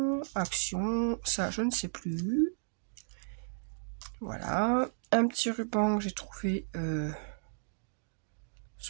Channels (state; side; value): silent; left; digital silence